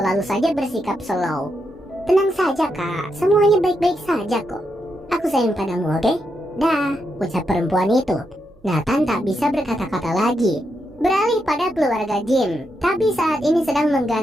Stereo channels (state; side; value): noise; right; hum, 29 dB below the sound